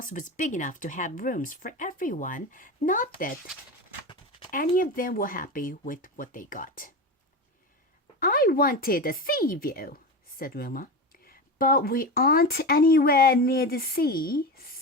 was big enough to have rooms for everyone. Not that any of them were happy with what they got. I wanted a sea view, said Wilma. But we aren't anywhere near the sea,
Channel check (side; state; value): both; normal; correlation 0.23